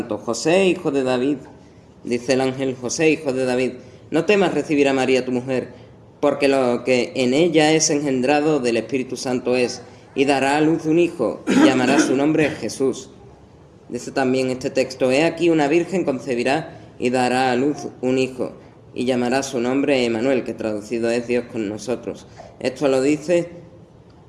José, hijo de David, dice el ángel: José, hijo de David, no temas recibir a María tu mujer, porque lo que en ella es engendrado del Espíritu Santo es, y dará a luz un hijo, y llamará su nombre Jesús. Dice también este texto: He aquí una virgen concebirá y dará a luz un hijo, y llamará su nombre Emmanuel, que traducido es Dios con nosotros. Esto lo dice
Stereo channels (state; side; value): identical; both; correlation 1.00